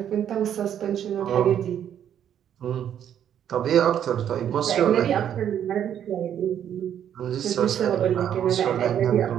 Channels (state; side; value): quieter; left; 9.7 dB